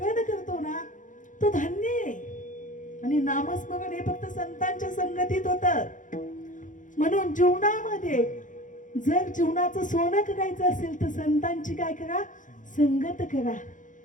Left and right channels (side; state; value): right; late; 0.37 ms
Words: करतो ना तो धन्य आहे. आणि नामस्मरण हे फक्त संतांच्या संगतीत होतं. म्हणून जीवनामध्ये जर जीवनाचं सोनं करायचं असेल तर संतांची काय करा? संगत करा.